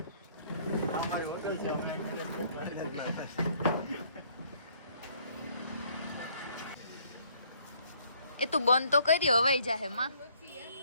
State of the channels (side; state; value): both; inverted; correlation -0.64